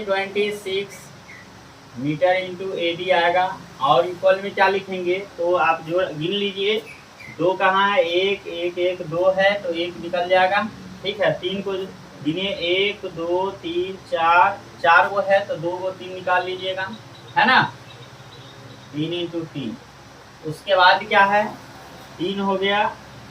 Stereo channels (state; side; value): identical; both; correlation 1.00